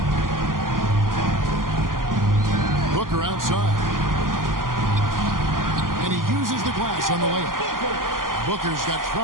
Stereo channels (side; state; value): left; late; 0.91 ms